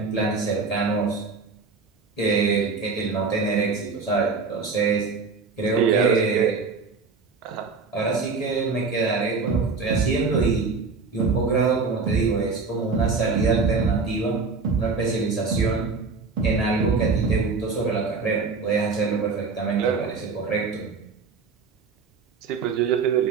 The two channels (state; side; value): quieter; left; 4.6 dB